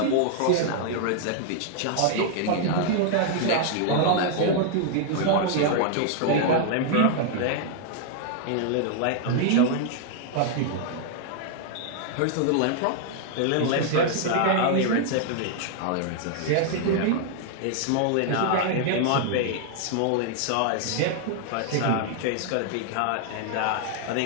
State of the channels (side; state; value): both; different; correlation 0.00